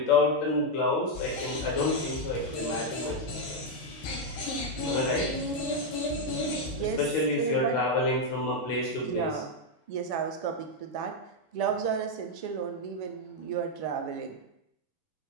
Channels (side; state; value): right; late; 8.5 ms